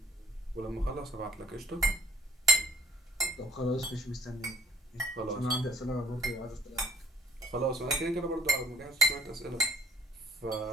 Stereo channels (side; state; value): both; normal; correlation 0.59